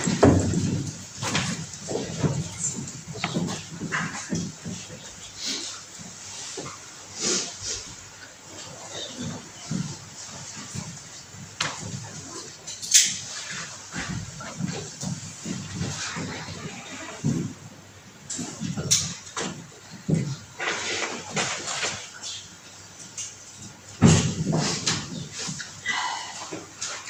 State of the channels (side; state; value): both; identical; correlation 1.00